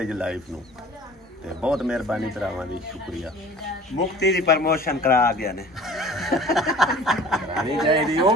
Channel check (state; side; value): normal; both; correlation 0.45